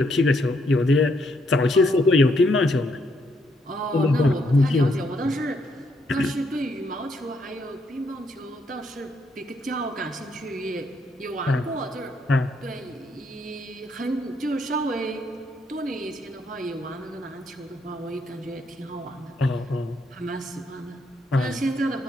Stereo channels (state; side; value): normal; both; correlation 0.74